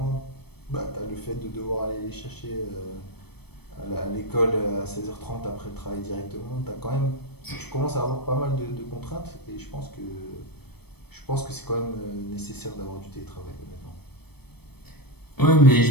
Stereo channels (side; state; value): right; late; 0.97 ms